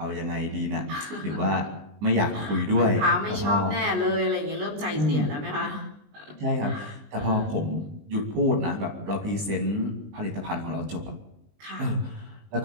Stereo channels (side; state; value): left; late; 20 ms